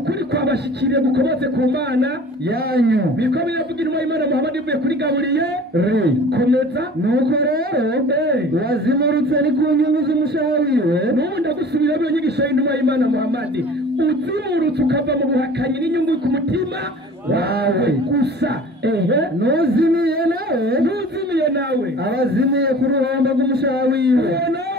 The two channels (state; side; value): normal; both; correlation 0.44